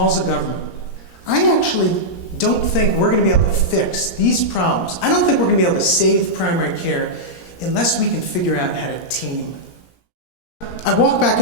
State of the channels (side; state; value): right; late; 17 ms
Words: of government, I actually don't think we're going to be able to fix these problems. I don't think we're going to be able to save primary care unless we can figure out how to team. I walk back